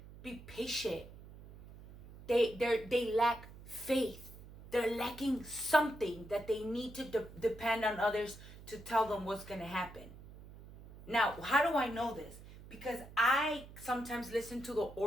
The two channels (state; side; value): noise; right; hum, 17 dB below the sound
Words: be patient. They lack faith. They're lacking something that they need to depend on others to tell them what's going to happen. Now, how do I know this? because I sometimes listen to the